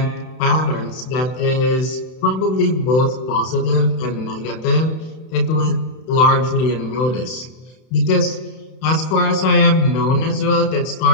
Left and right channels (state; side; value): late; right; 31 ms